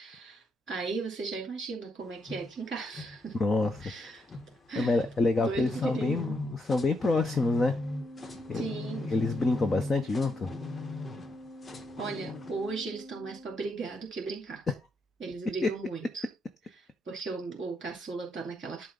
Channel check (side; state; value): both; normal; correlation 0.79